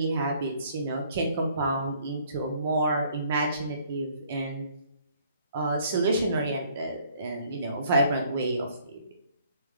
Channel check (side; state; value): both; inverted; correlation -0.61